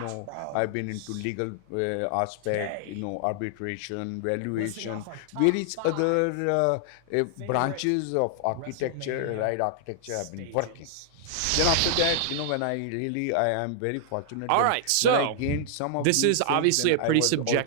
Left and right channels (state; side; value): different; both; correlation 0.00